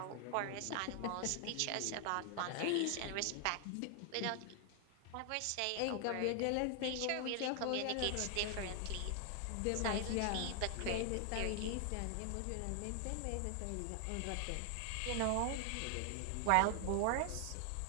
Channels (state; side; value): different; both; correlation 0.00